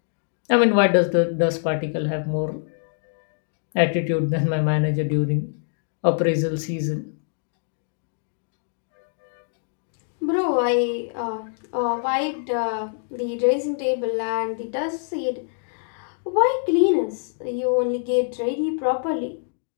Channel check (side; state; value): right; silent; digital silence